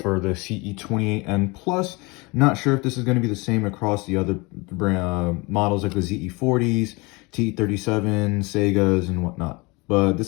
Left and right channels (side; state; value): right; quieter; 26.0 dB